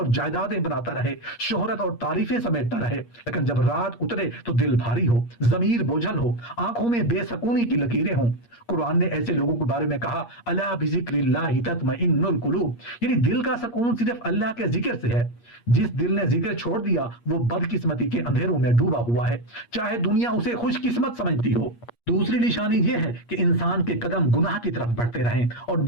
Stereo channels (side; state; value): right; late; 8.5 ms